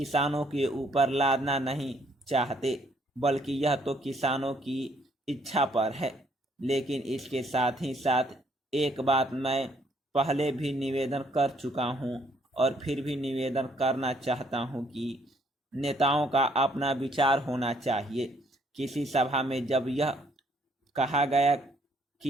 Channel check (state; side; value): normal; both; correlation 0.67